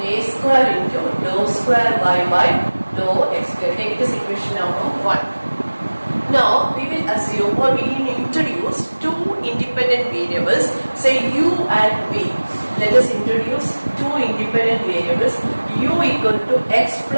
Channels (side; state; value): both; inverted; correlation -1.00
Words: a square into dou square y by dou x square. Take this equation number 1. Now we will assume or we will introduce two independent variables, say u and v. Let us introduce two independent variables, u equal to x